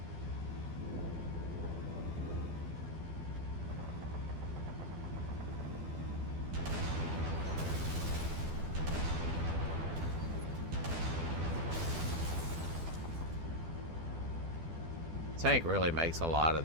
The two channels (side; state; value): left; late; 12 ms